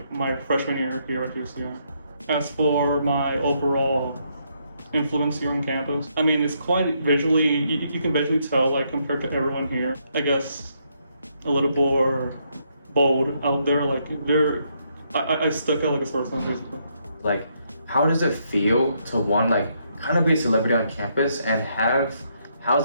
my freshman year here at UCR. As for my overall influence here on campus, I mean, it's quite visually, you can visually tell, like, compared to everyone here, I guess a little more bold out there. Like I stuck out like a sore thumb, basically. Like, how does it feel to kind of be a celebrity on campus, and how's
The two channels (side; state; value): both; inverted; correlation -0.75